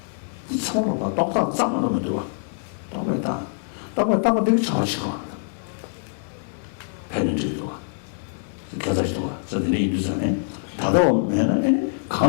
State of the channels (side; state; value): right; silent; digital silence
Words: 이 처음으로 봐. 똑같은 짱만 하면 들어와. 똑같다 되게 잘하시고. 배는지도 와. 겨자씨도 와. 저들이 인도산에 다다가 오면은